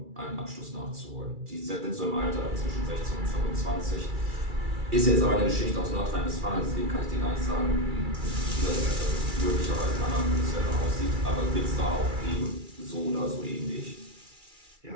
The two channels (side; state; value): left; late; 2.3 ms